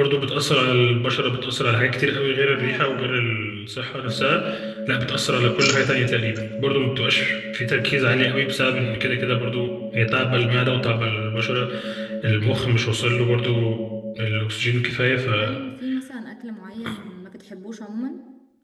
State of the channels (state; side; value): identical; both; correlation 1.00